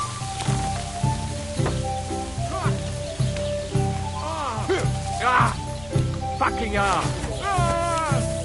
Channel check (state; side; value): noise; left; rumble, 19 dB below the sound